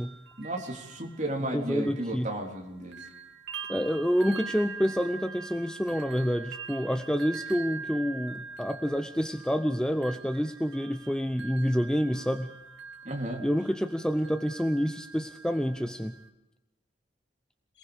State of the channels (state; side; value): normal; both; correlation 0.92